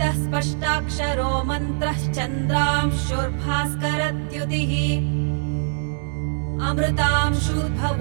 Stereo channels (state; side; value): silent; left; digital silence